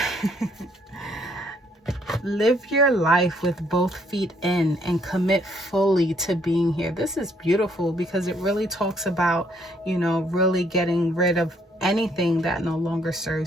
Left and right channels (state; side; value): normal; both; correlation 0.68